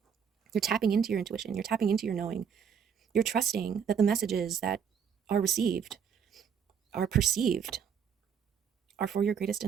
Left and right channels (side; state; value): left; quieter; 7.4 dB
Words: You're tapping into your intuition. You're tapping into your knowing. You're trusting that the messages that are received, are perceived, are for your greatest